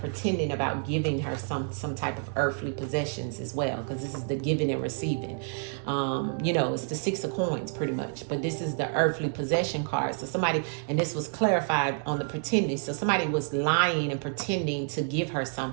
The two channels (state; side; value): silent; left; 59 dB below the other